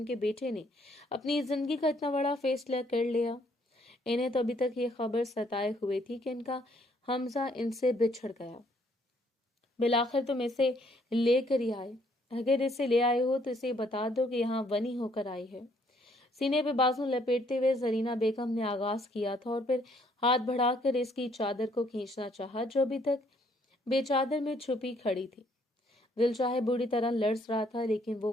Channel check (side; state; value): both; normal; correlation 0.66